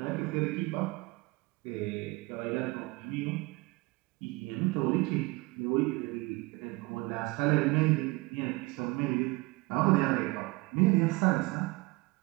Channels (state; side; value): quieter; left; 23.8 dB